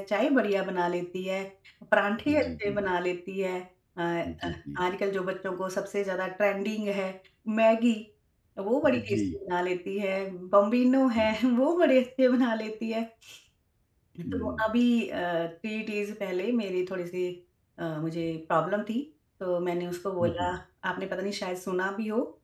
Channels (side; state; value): both; identical; correlation 1.00